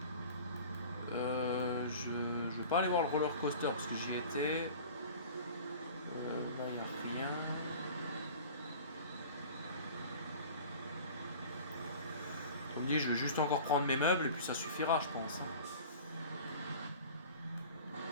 Je vais pas aller voir le roller coaster parce que j'y étais. Là, il n'y a rien. Comme dit, je vais juste encore prendre mes meubles et puis ça suffira, je pense.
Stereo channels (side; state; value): both; inverted; correlation -0.41